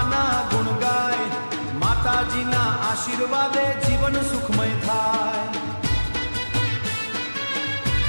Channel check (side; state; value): both; inverted; correlation -1.00